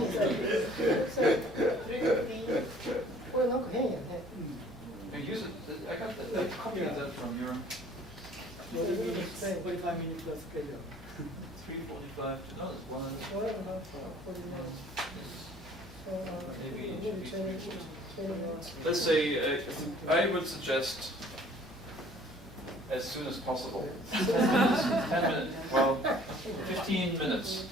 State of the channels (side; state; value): both; normal; correlation 0.54